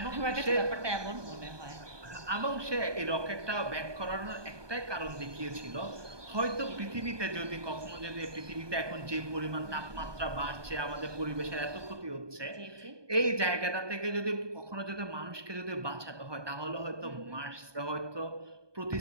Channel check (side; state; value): left; late; 1.2 ms